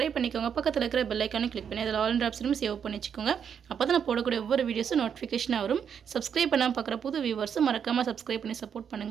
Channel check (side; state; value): left; quieter; 7.7 dB